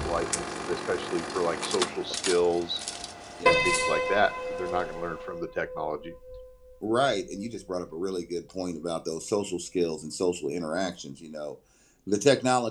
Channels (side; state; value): both; identical; correlation 1.00